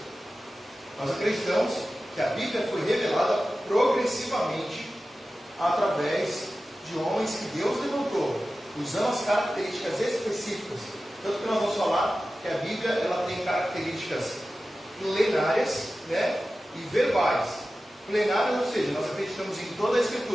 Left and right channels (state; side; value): normal; both; correlation 0.94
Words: Nós acreditamos que a Bíblia foi revelada progressivamente através de homens que Deus levantou, usando as características específicas. Tanto que nós vamos falar que a Bíblia ela tem características plenárias, né, e verbais. Plenárias, ou seja, nós acreditamos em toda a